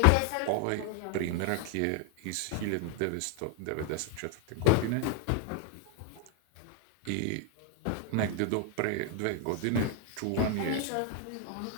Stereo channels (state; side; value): different; both; correlation 0.01